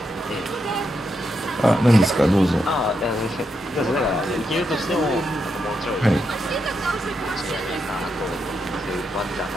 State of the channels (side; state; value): both; normal; correlation 0.83